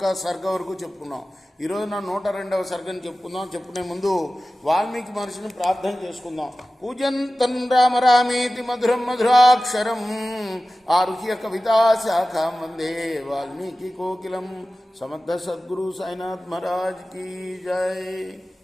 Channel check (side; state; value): both; normal; correlation 0.96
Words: సర్గ వరకు చెప్పుకున్నాం. ఈరోజు నా 102వ సర్గని చెప్పుకుందాం. చెప్పుకునే ముందు వాల్మీకి మహర్షిని ప్రార్థన చేసుకుందాం. పూజంతం రామ రామేతి మధురం మధురాక్షరం ఆరుహ్య కవితా శాఖాం వందే వాల్మీకి కోకిలం. సమర్థ సద్గురు సాయినాథ్ మహారాజ్ కీ జై.